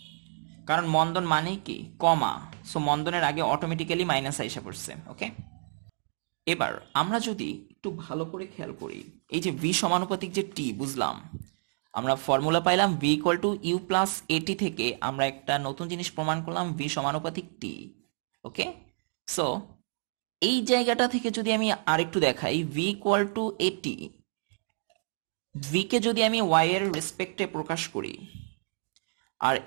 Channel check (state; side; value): silent; left; digital silence